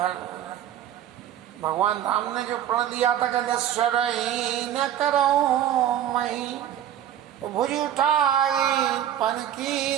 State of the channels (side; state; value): left; quieter; 11.0 dB